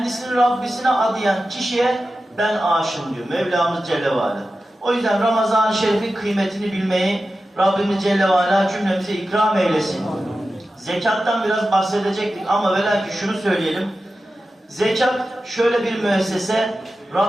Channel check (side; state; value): both; normal; correlation 0.93